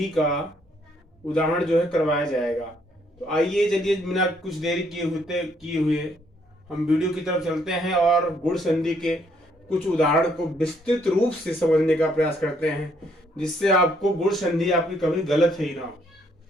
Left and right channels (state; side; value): normal; both; correlation 0.69